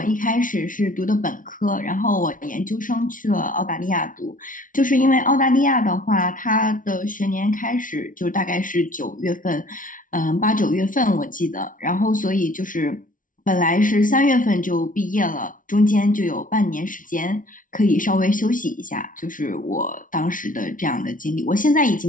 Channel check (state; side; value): late; right; 0.38 ms